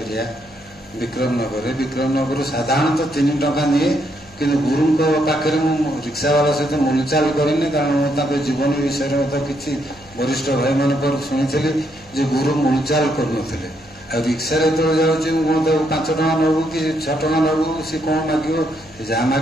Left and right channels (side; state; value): left; noise; hum, 27 dB below the sound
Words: ଏରିଆ ବିକ୍ରମନଗରରେ। ବିକ୍ରମନଗରରୁ ସାଧାରଣତଃ 3 ଟଙ୍କା ନିଏ, କିନ୍ତୁ ଗୁରୁଙ୍କ ପାଖରେ ମୁଁ ରିକ୍ସାବାଲା ସହିତ ମୁଲଚାଲ କରିନି, କାରଣ ମୁଁ ତାଙ୍କ ଜୀବନୀ ବିଷୟରେ ମଧ୍ୟ କିଛି ବରିଷ୍ଠ ଭାଇମାନଙ୍କର ଶୁଣିଥିଲି ଯେ ଗୁରୁ ମୁଲଚାଲ କରୁନଥିଲେ। ଆଉ ରିକ୍ସାରେ ଯେତେବେଳେ ଯାଉଛି, ମୁଁ କ'ଣ ତାକୁ 5 ଟଙ୍କା ନେବୁ କି 6 ଟଙ୍କା ନେବୁ, ସେ କ'ଣ ମାଗିବ, ଯାହା